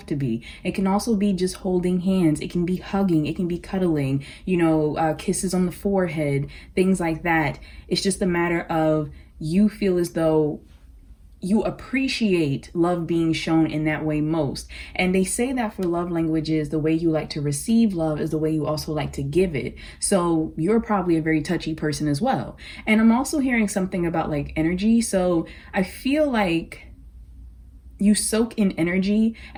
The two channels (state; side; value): identical; both; correlation 1.00